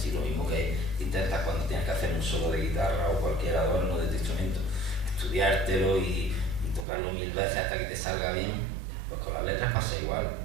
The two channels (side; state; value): left; drops out; at 6.9 s